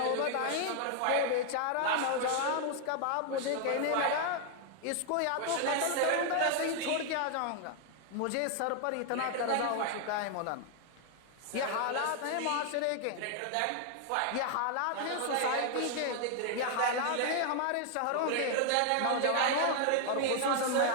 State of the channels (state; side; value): different; both; correlation 0.00